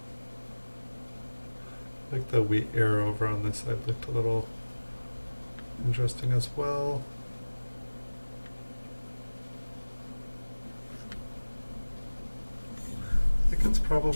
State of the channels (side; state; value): both; inverted; correlation -1.00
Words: Like the wheat ear over on this side looked a little interesting as well. I think it's